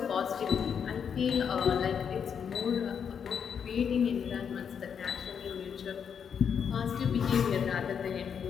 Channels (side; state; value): right; quieter; 7.3 dB